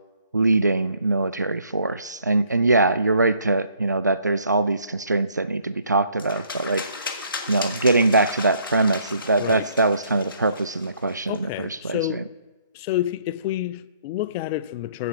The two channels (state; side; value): inverted; both; correlation -0.64